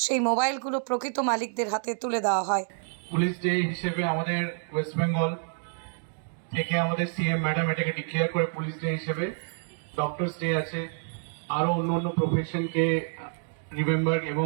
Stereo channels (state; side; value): silent; left; 59 dB below the other